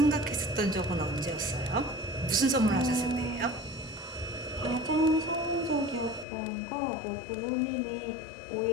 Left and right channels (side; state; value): right; drops out; at 6.2 s